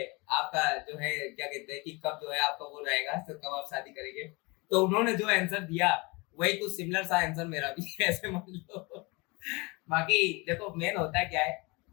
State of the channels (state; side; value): quieter; right; 26.7 dB